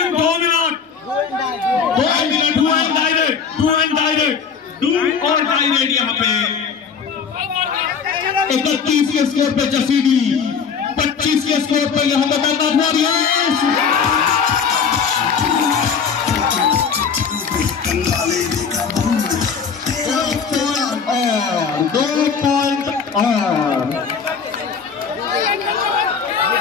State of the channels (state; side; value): quieter; right; 6.3 dB